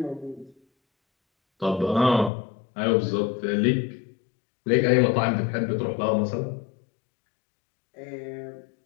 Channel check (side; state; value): right; drops out; at 2.3 s